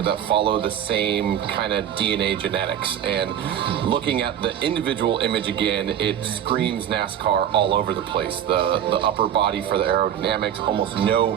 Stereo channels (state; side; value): quieter; left; 9.9 dB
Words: that follow the same kind of DNA genetics. And looking at the individual image again, it screams NASCAR all over the place. The upper body for the aerodynamics, almost